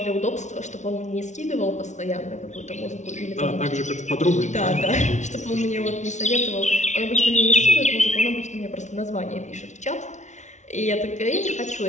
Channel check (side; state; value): right; late; 0.34 ms